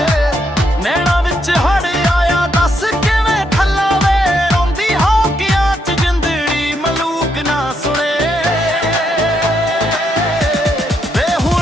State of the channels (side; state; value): both; normal; correlation 0.77